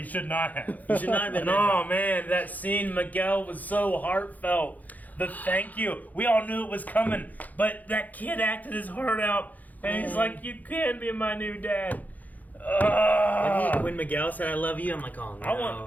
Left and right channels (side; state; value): right; late; 0.080 ms